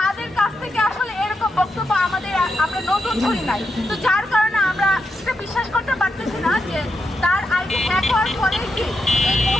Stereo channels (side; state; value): both; normal; correlation 0.85